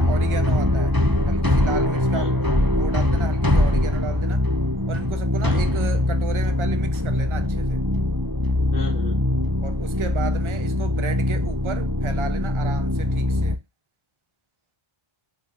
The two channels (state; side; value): late; left; 1.4 ms